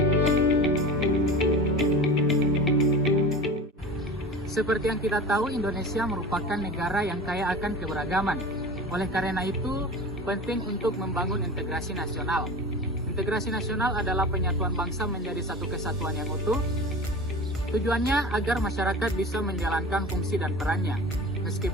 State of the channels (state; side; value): normal; both; correlation 0.34